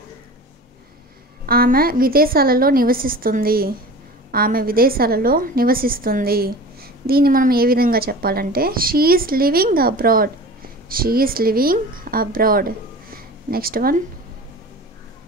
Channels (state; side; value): normal; both; correlation 0.37